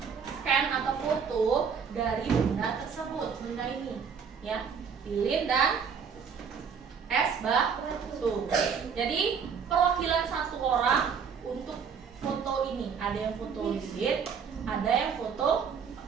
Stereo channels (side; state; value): left; quieter; 6.5 dB